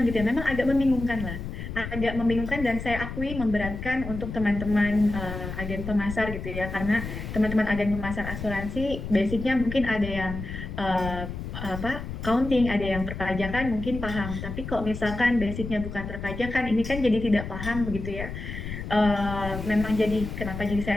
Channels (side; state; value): left; noise; rumble, 7 dB below the sound